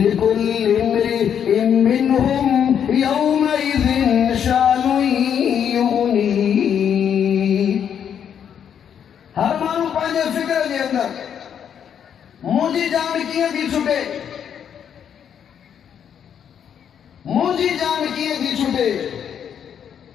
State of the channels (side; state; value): right; quieter; 8.5 dB